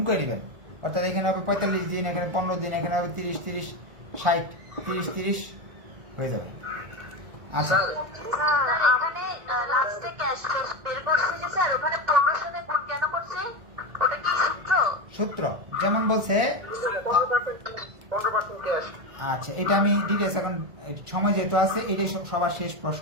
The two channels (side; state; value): left; late; 1.4 ms